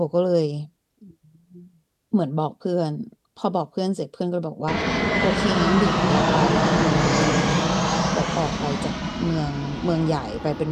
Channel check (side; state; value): both; identical; correlation 1.00